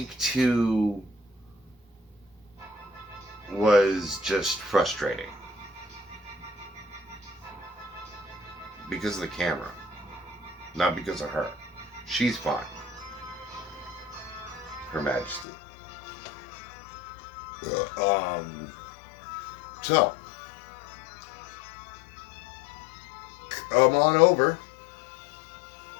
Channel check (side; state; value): right; drops out; at 15.5 s